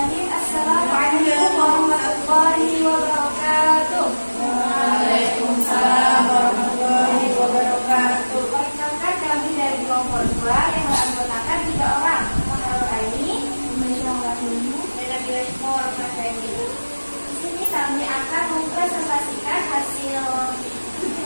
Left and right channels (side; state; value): both; inverted; correlation -1.00